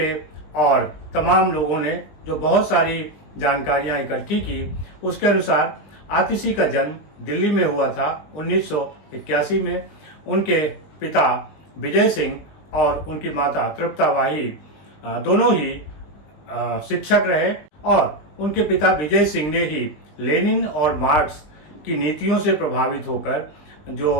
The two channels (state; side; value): late; right; 20 ms